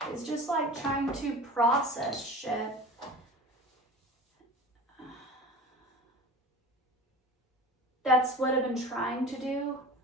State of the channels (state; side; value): normal; both; correlation 0.36